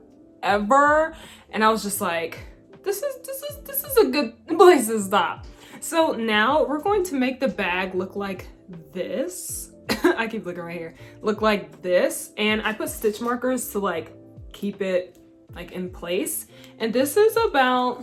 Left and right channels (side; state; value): both; identical; correlation 1.00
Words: and I was just like, this is a good place to stop. So now we're going to make the bag look like this. I keep looking right here. Look like this, and I put stitch markers to like keep it like in place. And this is